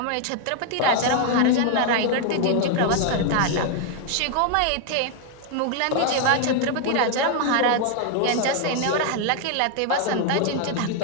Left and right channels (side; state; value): both; different; correlation 0.00